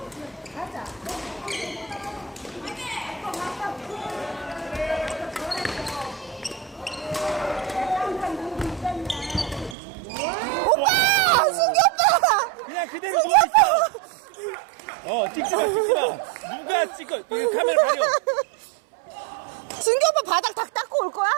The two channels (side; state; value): left; drops out; at 9.8 s